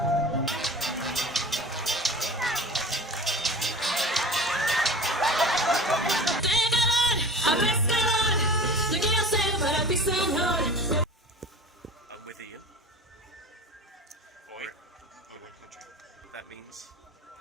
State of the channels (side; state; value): both; normal; correlation 0.37